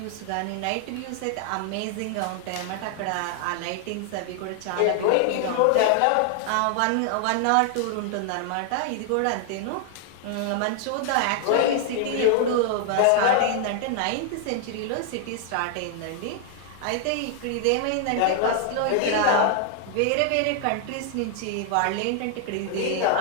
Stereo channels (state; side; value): different; both; correlation 0.00